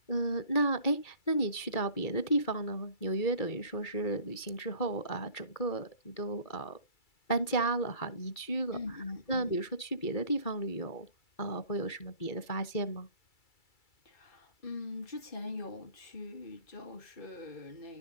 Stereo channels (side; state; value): right; late; 2.3 ms